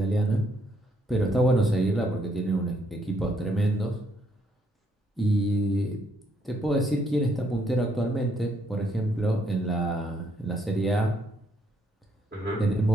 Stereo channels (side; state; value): both; normal; correlation 0.72